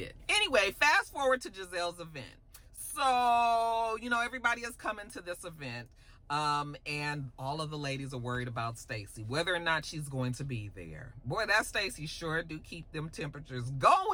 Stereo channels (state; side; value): identical; both; correlation 1.00